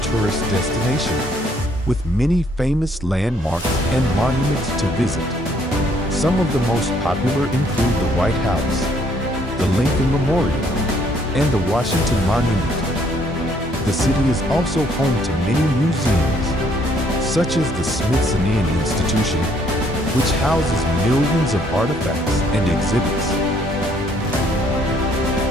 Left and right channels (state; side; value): normal; both; correlation 0.66